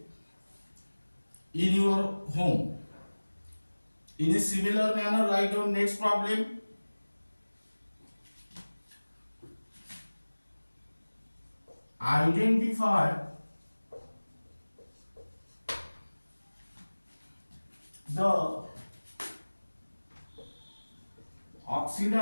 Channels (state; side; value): inverted; both; correlation -1.00